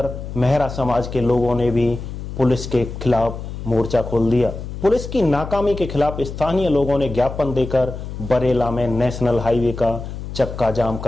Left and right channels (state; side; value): noise; left; hum, 9 dB below the sound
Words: मेहरा समाज के लोगों ने भी पुलिस के खिलाफ मोर्चा खोल दिया। पुलिस की नाकामी के खिलाफ स्थानीय लोगों ने ज्ञापन देकर बरेला में नेशनल हाईवे का चक्का जाम